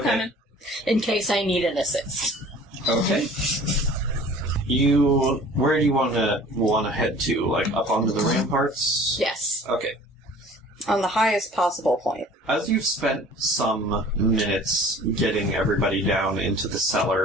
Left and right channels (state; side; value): normal; both; correlation 0.47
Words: coming. in case I need an assist. Okay. Where do you want to head to? Like up onto the ramparts? Yes. Okay. On the highest possible point. As you've spent some minutes getting everybody down into the